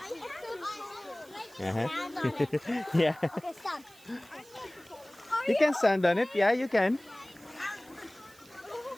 Yeah. Okay, stop. You can stand on it. Yeah, you can.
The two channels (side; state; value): right; noise; hiss, 24 dB below the sound